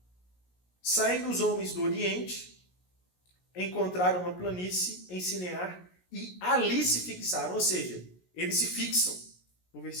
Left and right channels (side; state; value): right; late; 17 ms